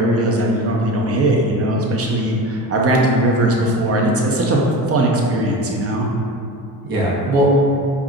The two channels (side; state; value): both; normal; correlation 0.32